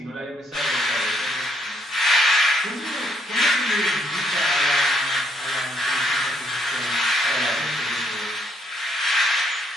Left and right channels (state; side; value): normal; both; correlation 0.71